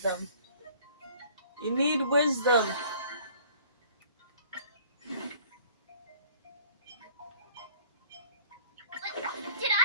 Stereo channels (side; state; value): both; inverted; correlation -0.54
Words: You need wisdom. Did